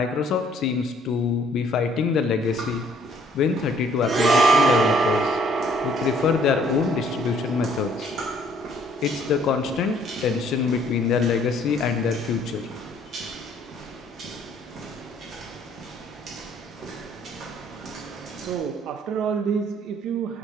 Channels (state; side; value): normal; both; correlation 0.62